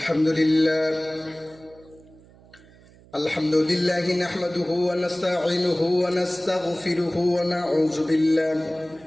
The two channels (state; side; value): noise; right; hum, 26 dB below the sound